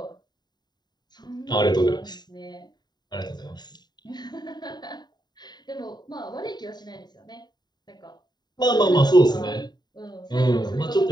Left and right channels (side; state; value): right; late; 0.20 ms